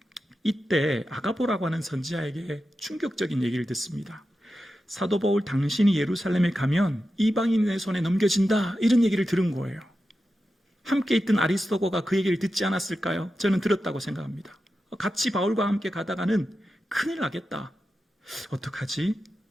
이때 아가보라고 하는 선지자에게 충격적인 얘기를 듣습니다. 사도 바울 당신이 예루살렘에 가면 이방인의 손에 넘겨진다 이런 얘기를 들은 거예요. 함께 있던 아리스도거가 그 얘기를 듣지 않았을까요? 저는 들었다고 생각합니다. 같이 바울과 함께 가다가는 큰일 나겠다. 어떡하지?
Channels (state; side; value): normal; both; correlation 0.91